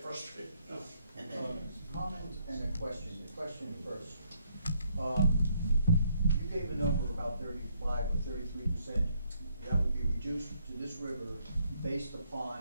frustrated. Comment and a question. The question first. You gave a number about 35 or 33% that would be reduced to this river based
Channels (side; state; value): both; inverted; correlation -0.71